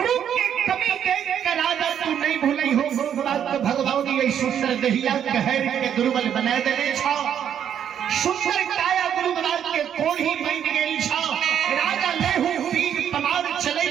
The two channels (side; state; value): left; quieter; 9.1 dB